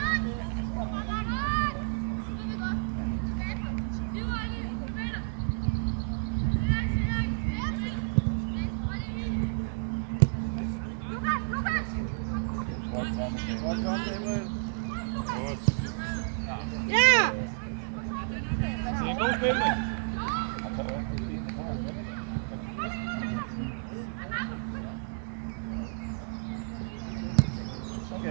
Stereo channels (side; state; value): left; silent; 57 dB below the other